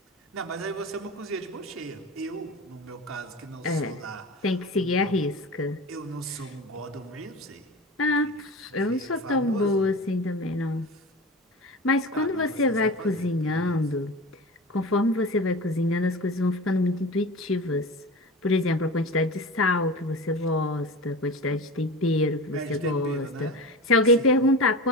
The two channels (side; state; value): both; normal; correlation 0.31